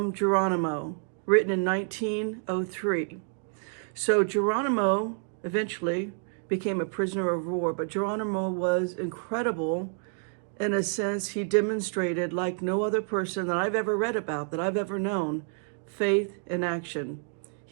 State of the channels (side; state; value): left; silent; 57 dB below the other